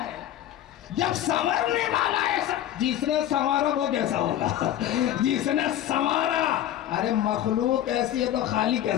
جب سنورنے والا ایسا، جس نے سنوارا وہ کیسا ہوگا؟ جس نے سنوارا، ارے مخلوق ایسی ہے تو خالق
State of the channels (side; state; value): right; quieter; 11.9 dB